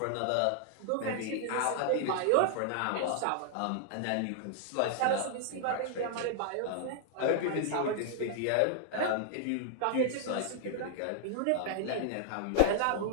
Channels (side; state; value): both; different; correlation -0.01